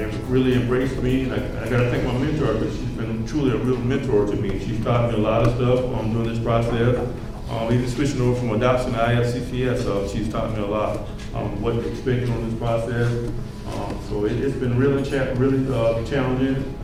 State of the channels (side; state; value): both; identical; correlation 1.00